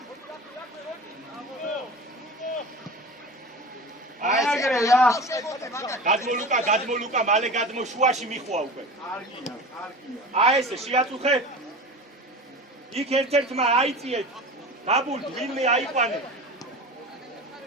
აიგრე რა გადმოლუკა მალე გადმო შუაში მიხვა უკვე კარგია აი ესე შეაწუხე იქ ერთ-ერთმა აიწიეთ დაბულ ვინმე აიყვანე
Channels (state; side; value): normal; both; correlation 0.33